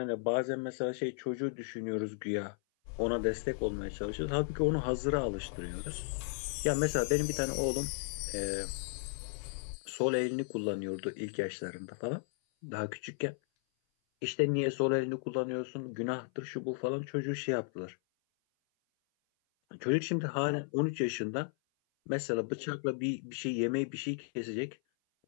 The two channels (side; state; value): right; silent; 55 dB below the other